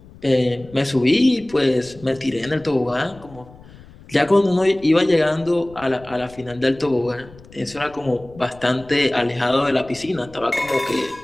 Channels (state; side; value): noise; left; rumble, 22 dB below the sound